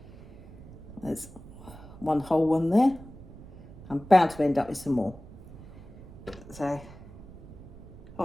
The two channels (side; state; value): right; noise; rumble, 17 dB below the sound